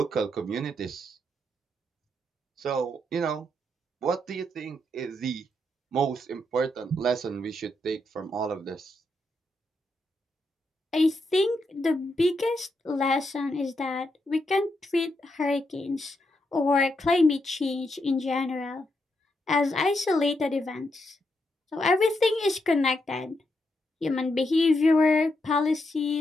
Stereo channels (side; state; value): both; normal; correlation 0.81